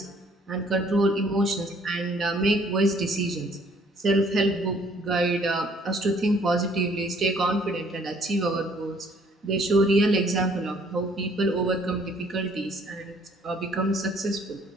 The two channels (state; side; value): normal; both; correlation 0.60